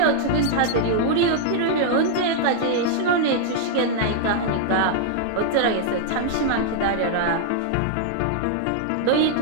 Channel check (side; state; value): both; different; correlation -0.01